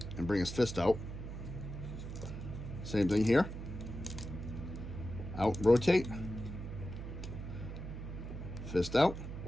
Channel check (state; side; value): noise; right; hum, 8 dB below the sound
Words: and bring his fist out. Same thing here. Out, rotate. Fist out.